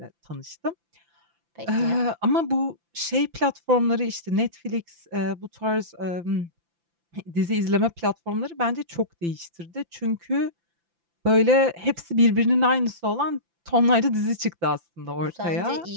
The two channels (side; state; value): left; late; 5.9 ms